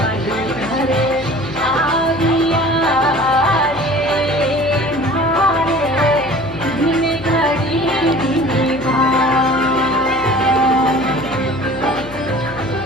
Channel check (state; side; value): noise; left; hum, 16 dB below the sound